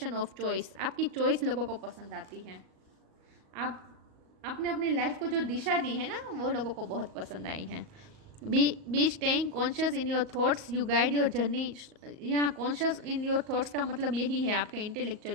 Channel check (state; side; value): late; left; 38 ms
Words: of choice. आपकी चॉइस लोगों को पसंद आती है। आपने अपनी लाइफ को जो दिशा दी है ना, वो लोगों को बहुत पसंद आई है। Be staying conscious in your thoughts you guide your journey. यहाँ कॉन्शियस इन योर थॉट्स का मतलब यही है आपका